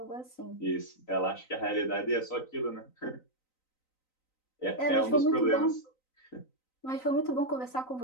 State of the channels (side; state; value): right; late; 3.9 ms